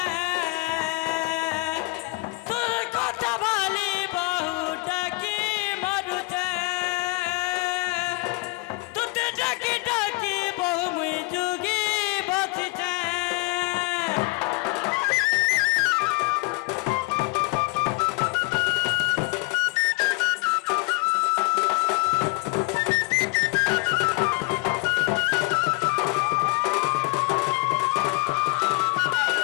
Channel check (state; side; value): quieter; right; 24.4 dB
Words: তোর কথা ভালি বহু ডাকি মরুছে তুতে ডাকি ডাকি বহু মুই যুগি বাঁচিছে